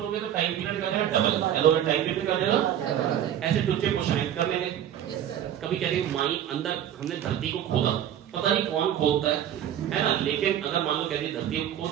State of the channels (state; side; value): quieter; left; 10.5 dB